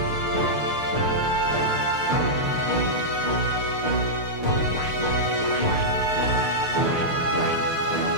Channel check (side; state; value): right; late; 6.6 ms